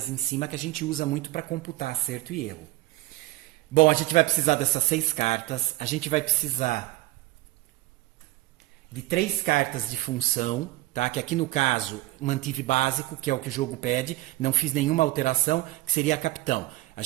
em cima, que a gente usa muito para computar acerto e erro. Bom, a gente vai precisar dessas 6 cartas, a gente vai precisar de 3 cartas de função, tá? Que aqui no caso mantive básico, que é o que o jogo pede, não fiz nenhuma alteração, que seria a capitão. A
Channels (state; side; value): quieter; left; 17.9 dB